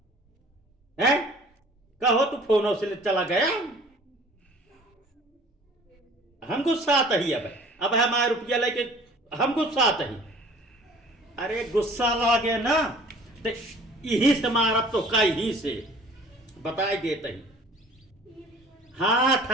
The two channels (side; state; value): both; normal; correlation 0.49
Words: है। कहो तू फोनों से चला गया। हम गुस्सा आता ही अब हमारे रुपया लेके हम गुस्सा आता ही। अरे गुस्सा लगे ना तो यही से मारब तो कहीं से बताई देते ही। हाँ,